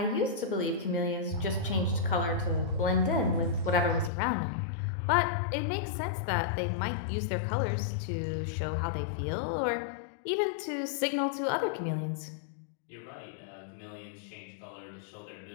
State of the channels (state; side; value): drops out; right; at 4.1 s